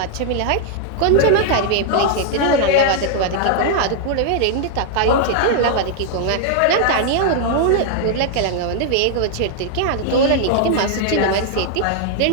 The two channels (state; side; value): different; both; correlation 0.00